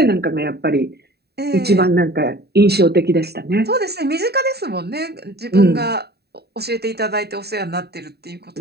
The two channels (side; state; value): left; late; 0.47 ms